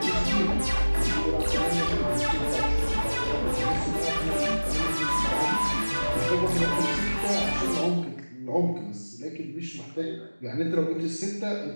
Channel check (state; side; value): inverted; both; correlation -1.00